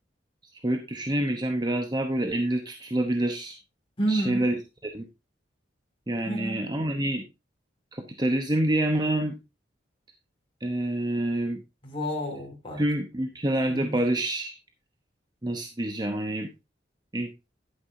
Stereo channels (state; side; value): normal; both; correlation 0.74